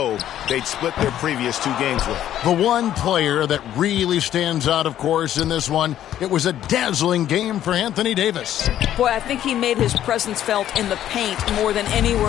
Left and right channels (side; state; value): right; quieter; 11.6 dB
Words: they'd split their previous 2 games with. The one player that really stands out, of course, in this one, it was a dazzling game for Anthony Davis. Boy, I think he made his presence felt in the paint more than